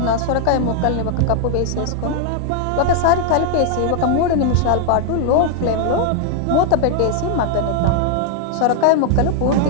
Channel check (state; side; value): different; both; correlation 0.00